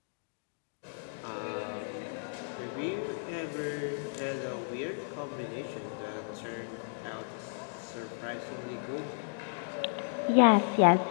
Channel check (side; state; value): right; silent; digital silence